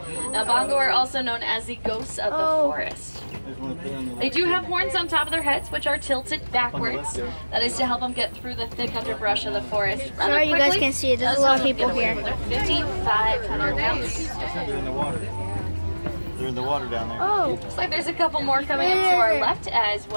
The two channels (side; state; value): both; inverted; correlation -1.00